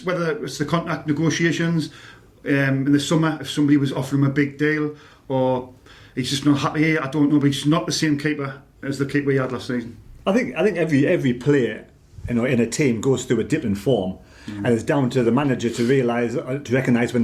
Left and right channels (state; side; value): identical; both; correlation 1.00